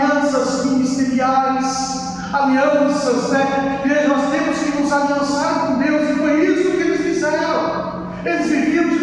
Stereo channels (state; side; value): identical; both; correlation 1.00